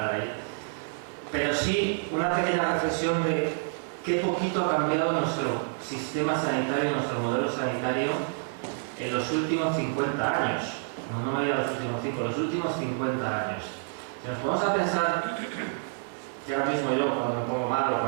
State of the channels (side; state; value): left; silent; digital silence